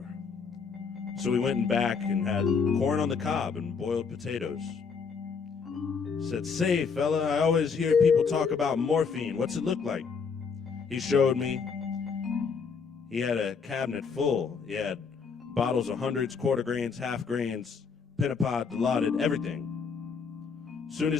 So we went in back and had corn on the cob and boiled potatoes. Said, say, fella, I always hear people talk about morphine. What's it look like? He showed me. He had a cabinet full. He had bottles of hundreds, quarter grains, half grains, Pennapod, Dilaudid, everything. Soon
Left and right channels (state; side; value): quieter; right; 5.6 dB